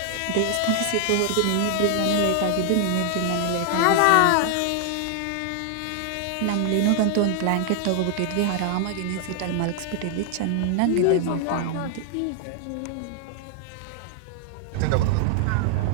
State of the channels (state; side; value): different; both; correlation -0.01